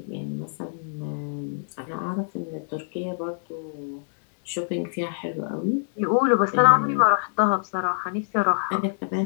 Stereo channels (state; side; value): silent; right; digital silence